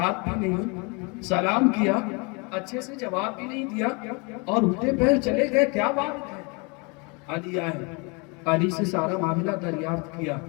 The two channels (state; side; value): quieter; right; 30.8 dB